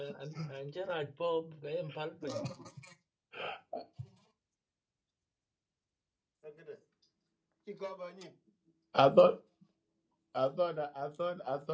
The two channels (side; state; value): both; identical; correlation 1.00